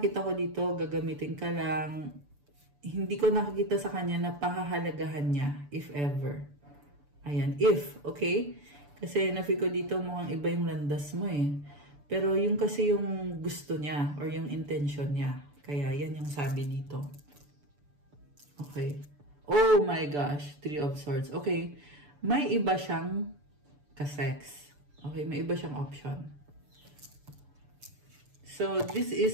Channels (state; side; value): late; left; 6.9 ms